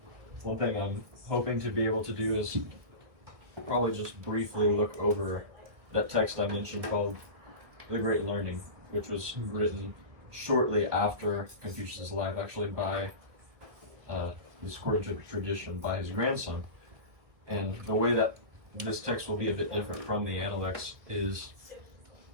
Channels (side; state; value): left; late; 1.6 ms